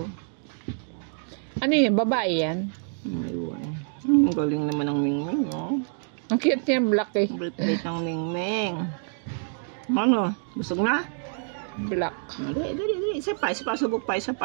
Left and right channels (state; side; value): silent; left; 60 dB below the other